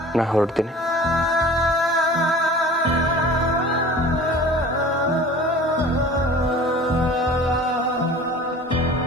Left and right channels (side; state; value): both; normal; correlation 0.42